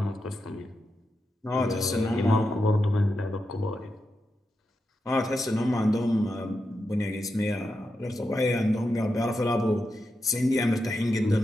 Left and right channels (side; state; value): both; normal; correlation 0.87